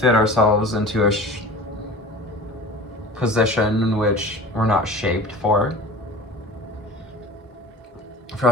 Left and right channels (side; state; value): both; normal; correlation 0.38